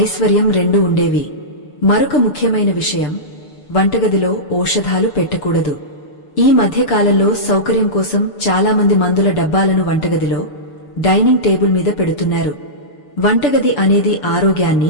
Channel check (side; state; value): right; late; 6.8 ms